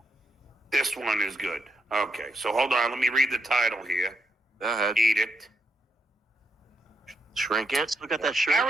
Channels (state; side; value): normal; both; correlation 0.80